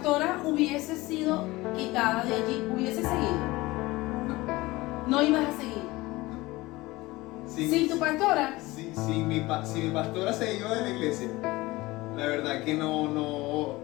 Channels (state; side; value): quieter; right; 20.3 dB